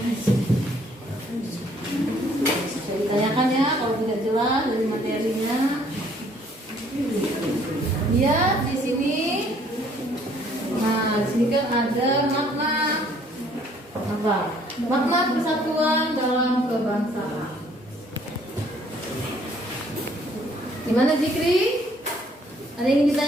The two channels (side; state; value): both; normal; correlation 0.61